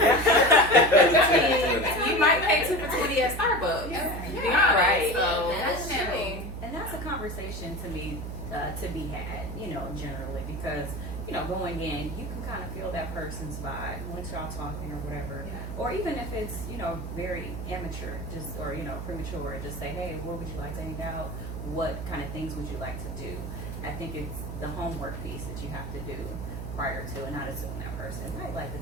You might pay 2 for $20 at Starbucks. To be honest. Right. So Definitely. And that's a conversation to be had, generally, because, going in, you can kind of feel that person's vibe once y'all talking or whatever. Yeah. Or even if it's, very amateur, or premature, just say, hey, where would you like to hang out? What kind of things would you like to do? I think it's the homework piece that you have to do prior to, and not assume that person might like the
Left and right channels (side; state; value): right; noise; hum, 7 dB below the sound